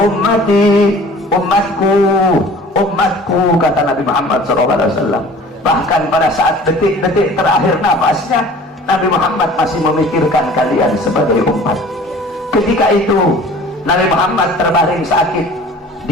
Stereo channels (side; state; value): both; normal; correlation 0.46